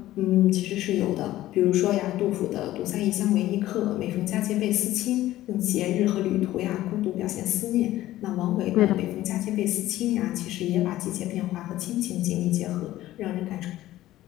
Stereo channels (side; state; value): right; quieter; 15.0 dB